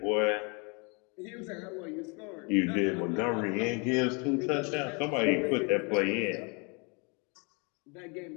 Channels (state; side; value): quieter; right; 32.2 dB